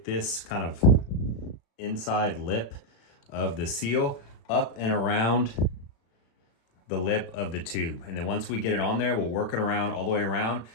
this kind of inside lip of the seal up and around the lip of the tube. And then once we get it on there, we'll work it around all the way around.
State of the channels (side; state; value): right; late; 36 ms